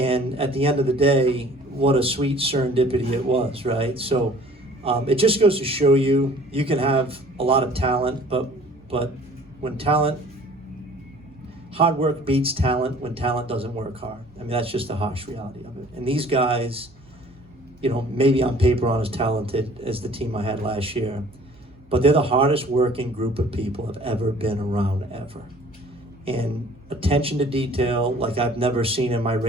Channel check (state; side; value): normal; both; correlation 0.52